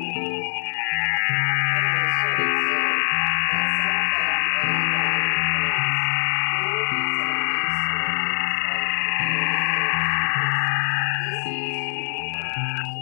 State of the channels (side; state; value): right; silent; 64 dB below the other